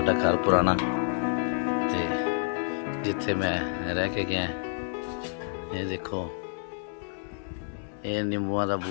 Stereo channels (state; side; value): silent; right; digital silence